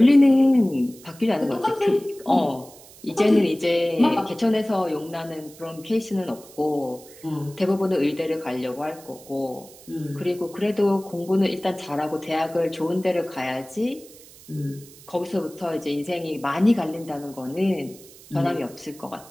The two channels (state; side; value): noise; right; hiss, 21 dB below the sound